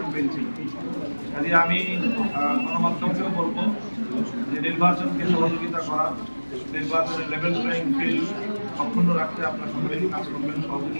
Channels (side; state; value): both; inverted; correlation -1.00